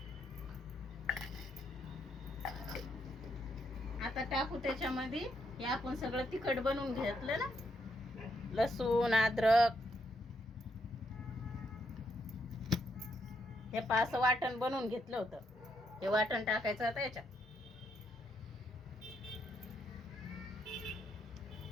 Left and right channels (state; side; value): normal; both; correlation 0.78